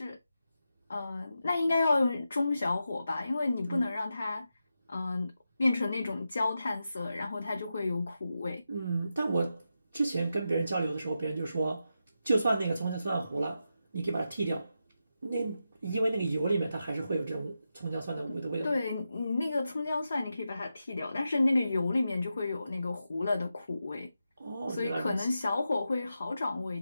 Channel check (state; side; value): inverted; both; correlation -0.88